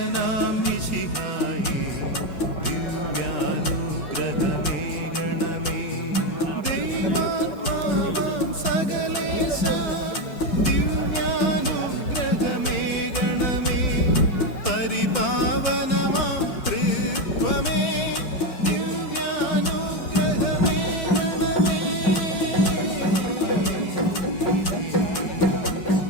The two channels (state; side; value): late; right; 5.4 ms